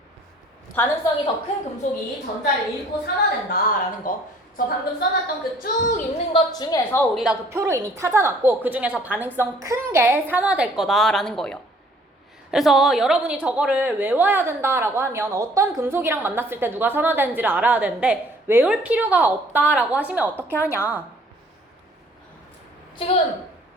전자를 잃고 산화된다라는 거. 저 방금 써놨던 그 쭉 있는 것 중에서 우리가 그 표로 이미 찾아놨고, 그 중에서 반응성 큰 게 산화될 거다라는 거예요. 그래서 여러분이 저거를 외워야 된다라고 하면 어떤 금속이랑 만났을 때 누가 산화되는지를 알아야 되는데, 외울 필요가 없다라고 하시면 어떻게 하냐. 지금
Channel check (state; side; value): normal; both; correlation 0.57